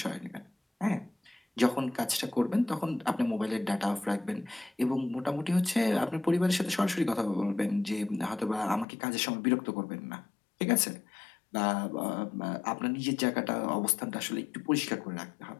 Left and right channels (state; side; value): drops out; right; at 8.8 s